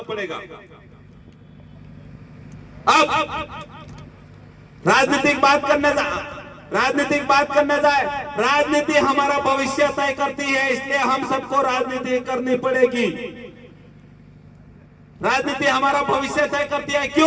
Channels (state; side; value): identical; both; correlation 1.00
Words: पड़ेगा। अब राजनीतिक बात करने जाए, राजनीति हमारा भविष्य तय करती है, इसलिए हम सबको राजनीति करनी पड़ेगी। राजनीति हमारा भविष्य तय करती है।